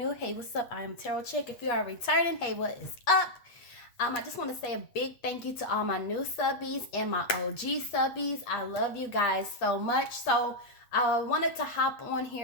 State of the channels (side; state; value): right; late; 8.4 ms